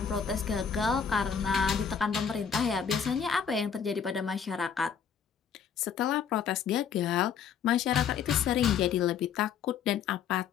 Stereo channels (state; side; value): quieter; right; 7.3 dB